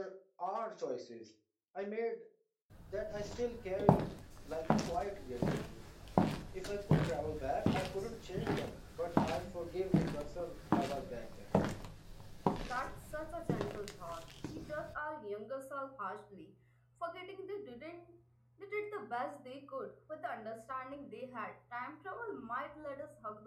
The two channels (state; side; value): identical; both; correlation 1.00